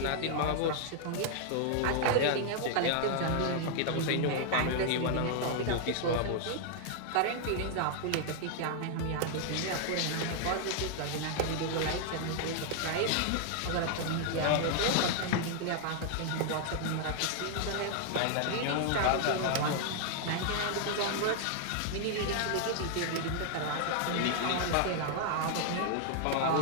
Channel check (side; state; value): both; different; correlation 0.00